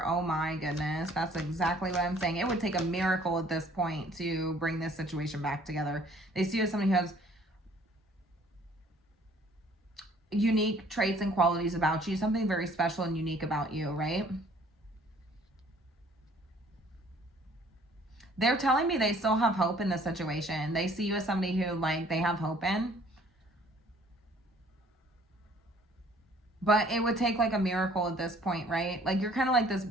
Oh my goodness. That's exactly what I'm saying. It would take a miracle at this point to bring this situation back together. They see you as somebody who has unique traits and qualities about you, something very special and unique about you, right? They're telling me they still have hope in this situation. They see you as somebody who like they have hope in. But it would take like a miracle at this point, right? Like you're kind of like this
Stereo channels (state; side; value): normal; both; correlation 0.57